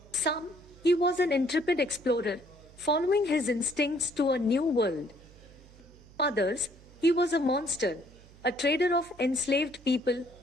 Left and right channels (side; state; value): right; noise; hum, 23 dB below the sound